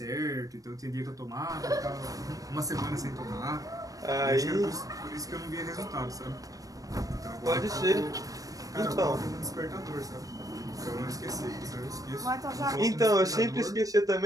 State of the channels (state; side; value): late; left; 0.17 ms